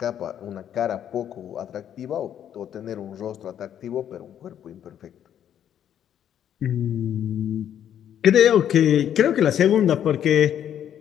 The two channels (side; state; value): right; quieter; 9.9 dB